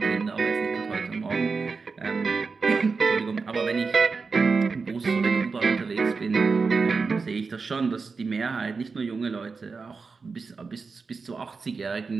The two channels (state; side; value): quieter; left; 4.7 dB